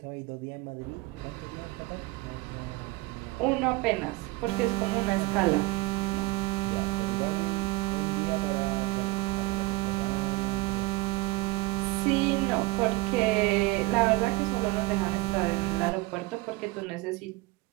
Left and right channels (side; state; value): left; quieter; 20.8 dB